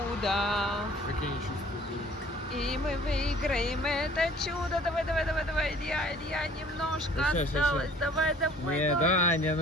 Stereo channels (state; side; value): normal; both; correlation 0.53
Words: Какие они чувства были? И мы выиграем это чудо. Давай, давай, давай, давай, Илья, немножко Сейчас, сейчас, осталось. сейчас. Давай, давай, Не, давай. Даня,